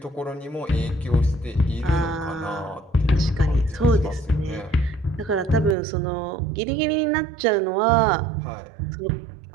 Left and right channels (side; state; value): left; drops out; at 5.8 s